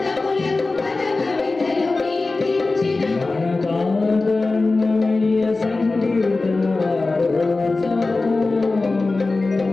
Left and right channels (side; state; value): right; quieter; 3.5 dB